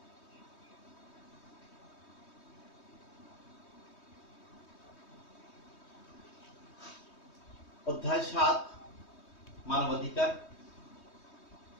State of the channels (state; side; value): late; right; 3.2 ms